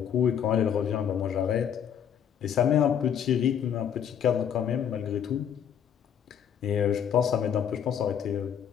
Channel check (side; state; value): right; quieter; 8.7 dB